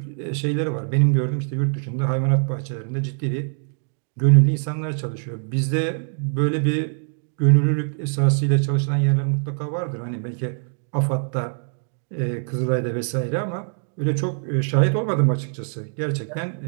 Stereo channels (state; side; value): silent; left; 60 dB below the other